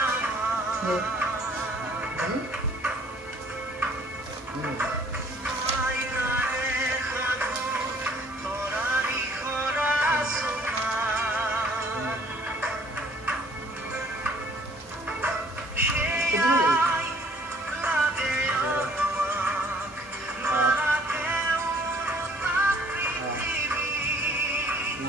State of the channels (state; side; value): normal; both; correlation 0.58